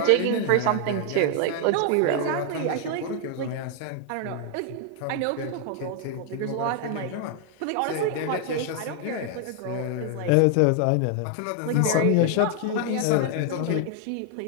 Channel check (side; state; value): both; different; correlation 0.00